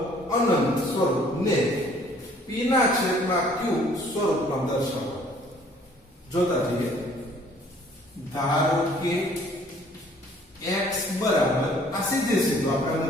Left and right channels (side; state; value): both; normal; correlation 0.57